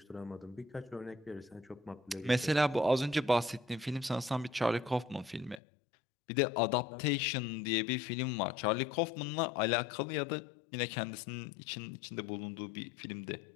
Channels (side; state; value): right; drops out; at 5.6 s